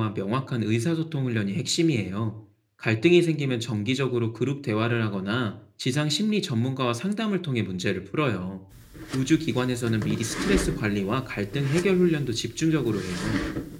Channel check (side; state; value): both; identical; correlation 1.00